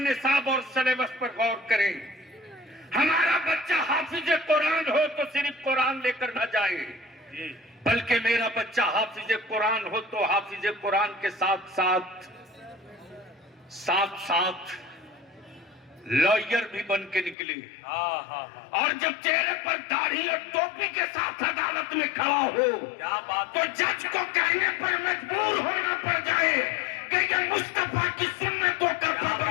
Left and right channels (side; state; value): right; drops out; at 17.4 s